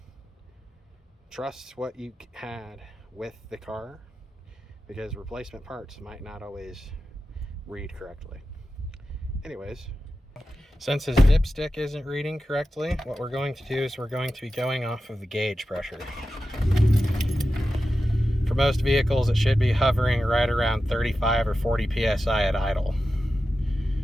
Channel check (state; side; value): normal; both; correlation 0.92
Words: trust what you had with the car, because replacement parts might not always read correctly. Anyways, since his dipstick isn't reading correctly, what we're going to do is we're going to be going off of the gauge pressure. For most vehicles, it should be hovering right around 35 or 40 psi at idle,